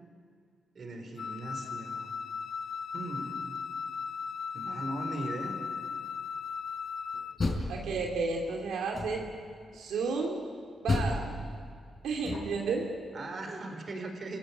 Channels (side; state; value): both; normal; correlation 0.77